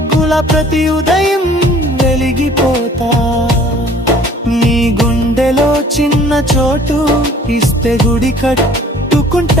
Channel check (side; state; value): both; normal; correlation 0.53